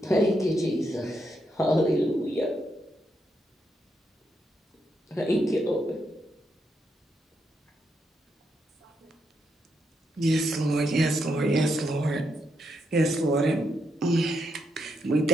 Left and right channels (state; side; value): normal; both; correlation 0.81